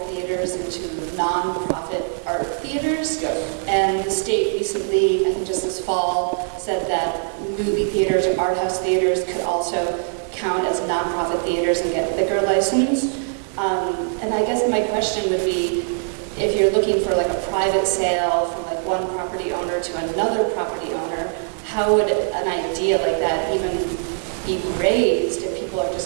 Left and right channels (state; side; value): silent; left; digital silence